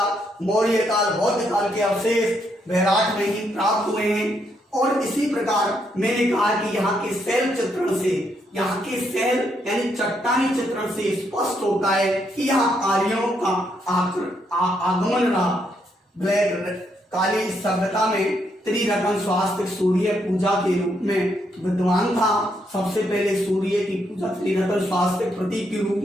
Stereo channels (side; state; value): both; normal; correlation 0.76